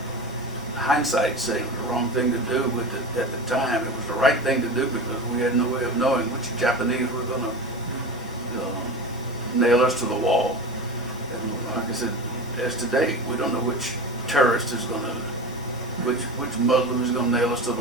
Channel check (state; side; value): normal; both; correlation 0.28